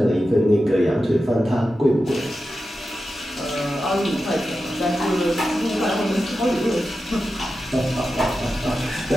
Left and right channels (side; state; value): both; normal; correlation 0.91